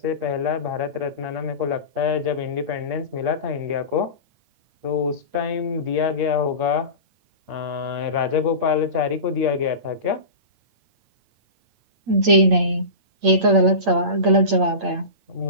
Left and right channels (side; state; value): left; late; 8.7 ms